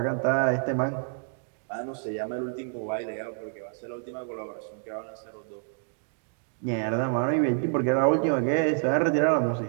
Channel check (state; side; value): silent; left; digital silence